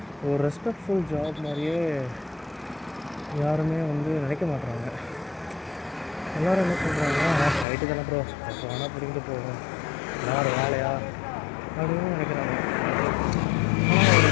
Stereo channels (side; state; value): right; drops out; at 7.7 s